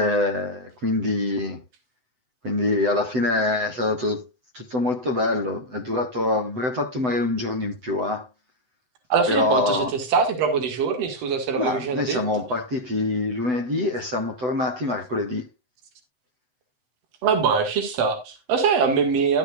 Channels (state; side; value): late; left; 7.9 ms